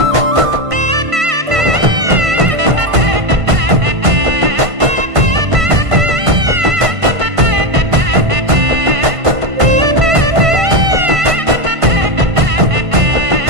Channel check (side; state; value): left; late; 1.5 ms